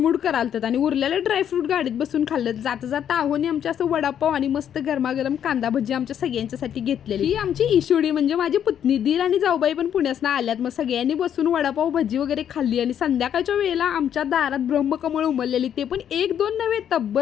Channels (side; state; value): right; quieter; 9.4 dB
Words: करालतात आणि उरलेलं ड्रायफ्रूट गाडीत बसून खाल्लं. जाता जाता आहोनी आमच्या असं वडापाव आणि मस्त गरमागरम कांदा भजी आमच्या सगळ्यांच्यासाठी घेतलेली. ही आमची ईशोडी म्हणजे माझी पुतणी. दीर आणि जाऊबाई पण पुण्यासनं आल्यात. मग सगळ्यांनी बसून वडापाव भजी वगैरे खाल्ली आणि संध्याकाळच्या वेळेला आमच्या दारात ब्रह्मकमळ उमललेली, ते पण 1-2 नव्हे